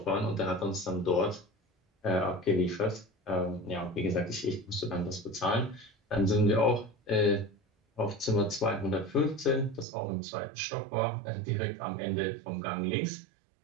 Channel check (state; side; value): drops out; left; at 9.9 s